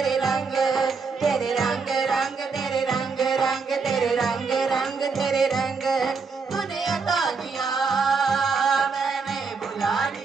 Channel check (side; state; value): left; quieter; 4.9 dB